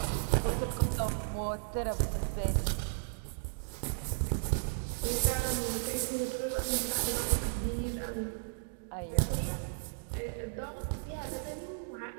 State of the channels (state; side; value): silent; left; digital silence